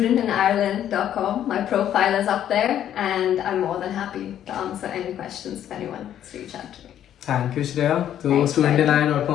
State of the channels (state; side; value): quieter; right; 10.7 dB